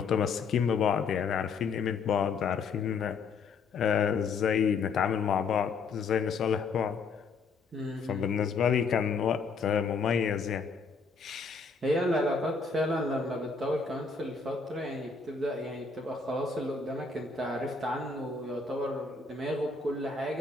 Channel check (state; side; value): quieter; right; 4.8 dB